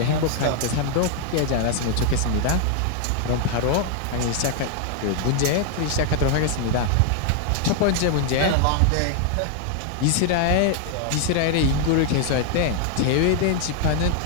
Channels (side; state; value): both; different; correlation 0.00